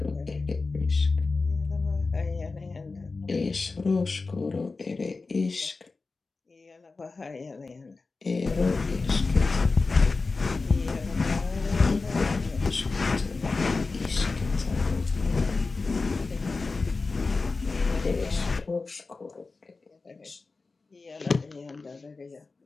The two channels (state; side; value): quieter; right; 3.9 dB